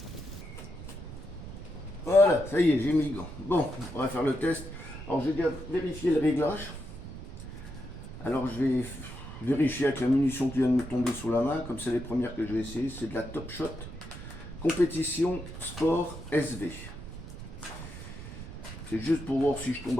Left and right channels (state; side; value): noise; right; rumble, 12 dB below the sound